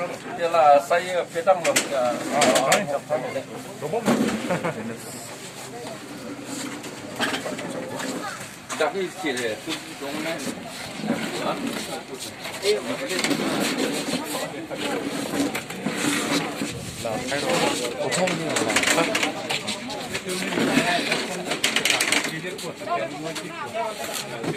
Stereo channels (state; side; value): identical; both; correlation 1.00